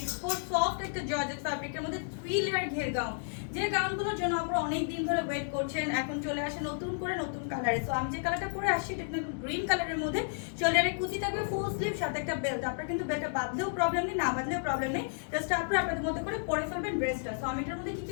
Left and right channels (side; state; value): right; silent; digital silence